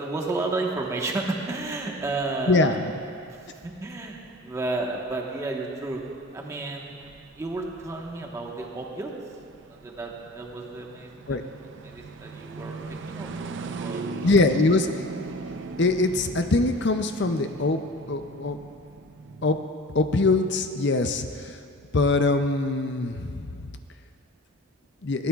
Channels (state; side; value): normal; both; correlation 0.39